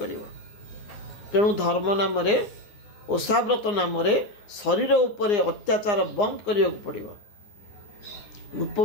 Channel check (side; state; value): right; late; 9.7 ms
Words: କରିବ। ତେଣୁ ଧର୍ମ ନାମରେ, ଓଷାବ୍ରତ ନାମରେ ଶରୀର ଉପରେ ଅତ୍ୟାଚାର ବନ୍ଦ କରିବାକୁ ପଡ଼ିବ।